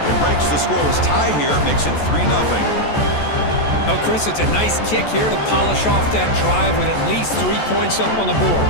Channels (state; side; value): late; right; 14 ms